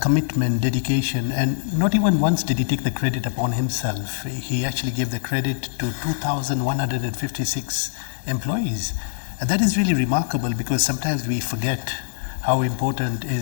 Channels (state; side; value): silent; right; 63 dB below the other